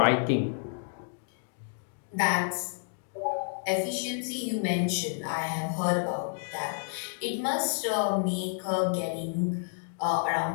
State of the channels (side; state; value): right; silent; 58 dB below the other